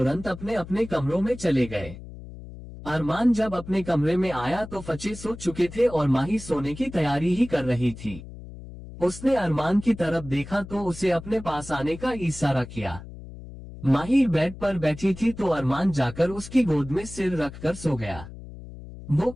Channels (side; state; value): left; noise; hum, 14 dB below the sound